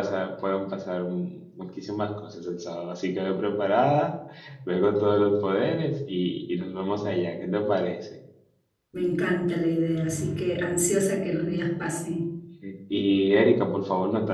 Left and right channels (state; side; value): identical; both; correlation 1.00